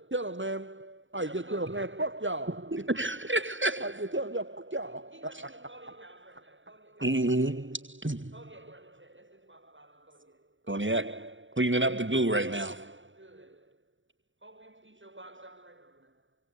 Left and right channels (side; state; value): left; late; 0.56 ms